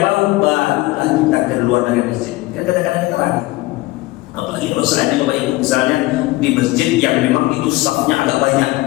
bau, barulah kita keluar dari masjid. Kadang-kadang kita ragu. Apalagi kalau seandainya baik misalnya di masjid yang memang itu safnya agak banyak,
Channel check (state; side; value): quieter; right; 19.7 dB